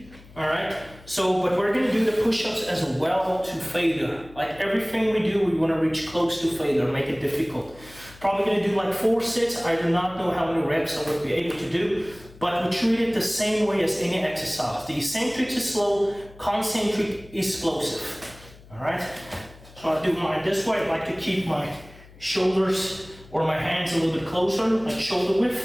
all right? So, but we're gonna do the push-ups as well to failure. Like everything we do, we wanna reach close to failure, make it difficult. Probably gonna do like 4 sets. I do not know how many reps I would be able to do, but we treat it the same way as any exercise. The eccentric is slow, concentric is explosive, all right? So I do mine this way. I like to keep my shoulders or my hands a little bit closer, like shoulder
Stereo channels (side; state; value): left; noise; hum, 22 dB below the sound